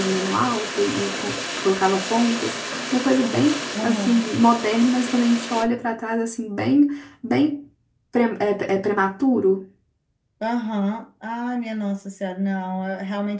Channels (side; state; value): both; identical; correlation 1.00